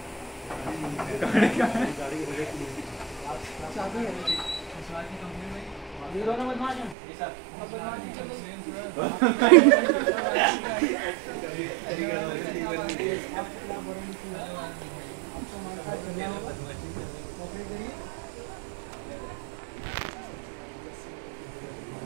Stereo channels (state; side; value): drops out; left; at 7.0 s